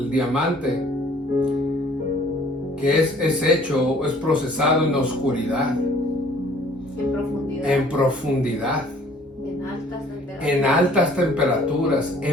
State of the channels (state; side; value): normal; both; correlation 0.55